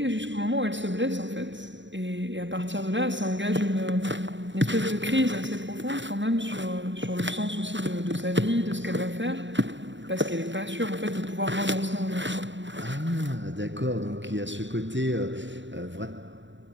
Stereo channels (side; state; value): left; late; 0.54 ms